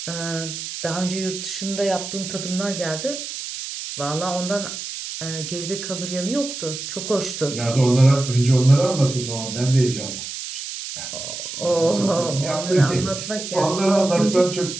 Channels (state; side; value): noise; right; hiss, 7 dB below the sound